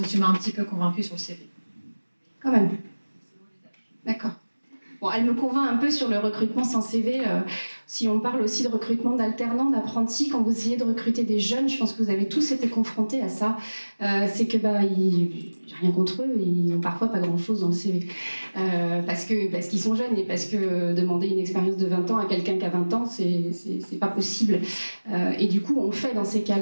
que tu m'as un petit peu convaincue sur le CV. Quand même. D'accord. Bon, elle me convainc un peu sur le recrutement sans CV. Si on parle aussi de recrutement d'alternants, d'apprentis, quand vous essayez de recruter des jeunes, je pense que vous avez tous été confrontés à ça. C'est que j'ai rien contre eux, ils n'ont parfois pas grand-chose dans le CV. Parce qu'ils sont jeunes et parce que demander une expérience de 20 ans à quelqu'un qui a 20 ans, c'est pas possible. Et du coup, on fait dans ces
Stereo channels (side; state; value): both; inverted; correlation -1.00